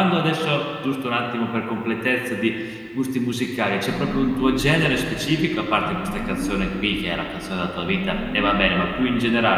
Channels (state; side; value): identical; both; correlation 1.00